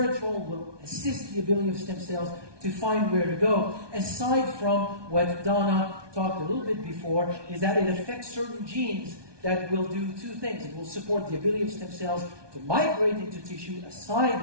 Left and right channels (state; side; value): late; left; 1.2 ms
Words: will assist the ability of stem cells to find where to go. Aside from what Donna talked a little bit before, is that it affects certain genes that will do two things. It will support the ability of stem cells to migrate into tissue